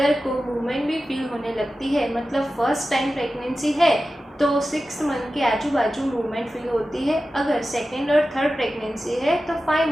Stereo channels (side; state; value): both; normal; correlation 0.94